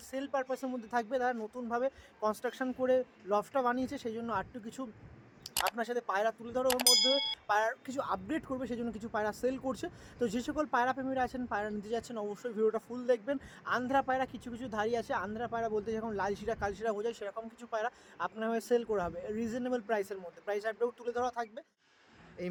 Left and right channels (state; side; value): identical; both; correlation 1.00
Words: সেল পারপাসের মধ্যে থাকবে। তারা নতুনভাবে কনস্ট্রাকশন করে লফটটা বানিয়েছে, সেই জন্য আরটু কিছু আপনার সাথে পায়রা তুলে ধরার মধ্যে পায়রার কিছু আপগ্রেড করবে, সেই জন্য কিছু পায়রা সেল করছে। তো যে সকল পায়রা প্রেমীরা আছেন, পায়রা নিতে যাচ্ছেন, অবশ্যই ভিডিওটা ফুল দেখবেন। আন্ধ্রা পায়রা কিছু কিছু ধারি আছে। আন্ধ্রা পায়রা বলতে যখন লালশিরা কালশিরা বোঝায়, সেরকম কিছু পায়রা আপনার হয়ে সেল করা হবে রিজনেবল প্রাইসের মধ্যে। প্রাইস আপডেট তুলে ধরা থাকবে। এই